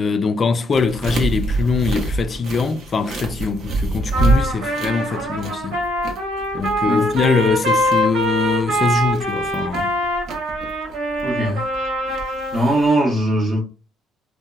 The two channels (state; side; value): normal; both; correlation 0.71